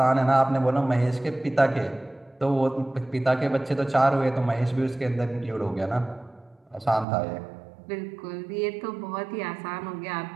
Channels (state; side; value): drops out; left; at 7.1 s